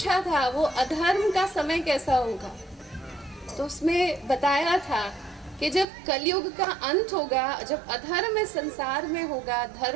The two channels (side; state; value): left; drops out; at 5.9 s